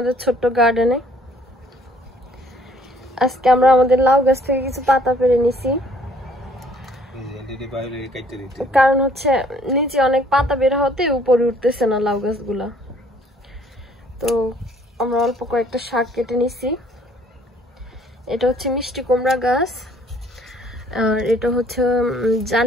ছোট্ট গার্ডেনে। আজকে আমরা আমাদের লাউ গাছ থেকে কিছু পাতা পেড়ে নিছি, কারণ হচ্ছে নিচে অনেক পাতা বের হতে উপরে উঠতেছে না লাউ গাছগুলা। তো আমরা অল্প কয়েকটা শাক কেটে নিছি। এটা হচ্ছে মিষ্টি কুমড়া গাছ, আর এটা হচ্ছে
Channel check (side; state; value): both; normal; correlation 0.60